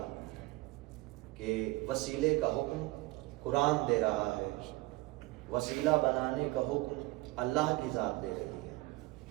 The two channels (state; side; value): quieter; left; 21.1 dB